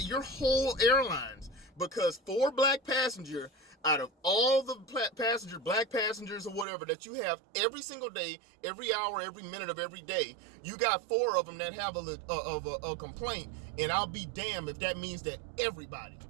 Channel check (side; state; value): left; drops out; at 6.7 s